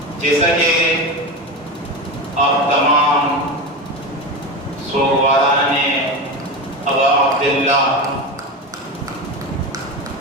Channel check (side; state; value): both; normal; correlation 0.22